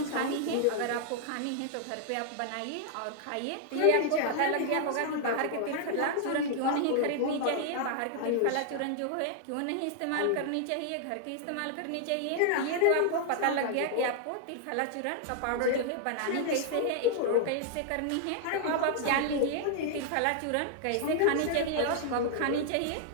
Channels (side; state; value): both; different; correlation -0.01